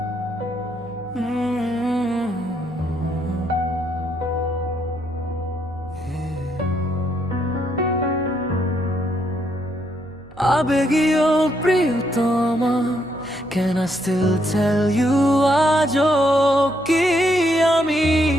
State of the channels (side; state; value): right; noise; hum, 24 dB below the sound